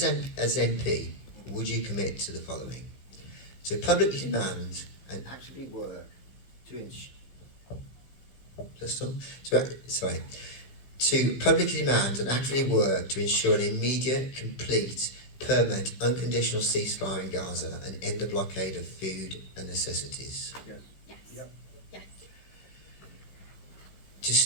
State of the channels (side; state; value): right; late; 16 ms